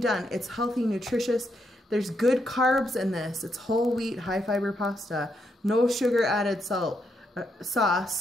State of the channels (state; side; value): normal; both; correlation 0.79